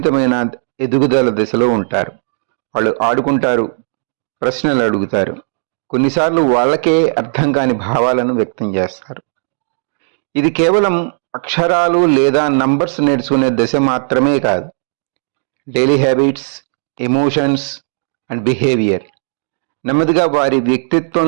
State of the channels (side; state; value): left; silent; digital silence